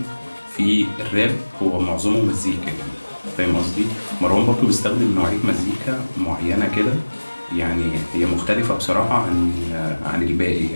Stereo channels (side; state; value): both; inverted; correlation -1.00